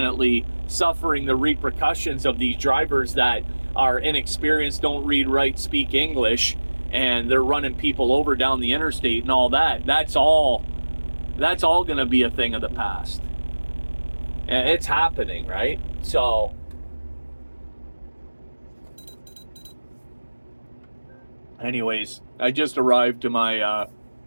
suffering the repercussions of these drivers that are inexperienced, don't read, write, speak English, and they're running people over down the interstate and all that. That's all going to be a thing of the past. And it's happening, right? So anyways, I just arrived to my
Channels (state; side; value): inverted; both; correlation -1.00